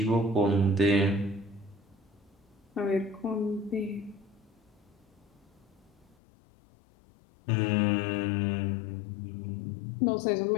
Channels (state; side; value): drops out; right; at 6.2 s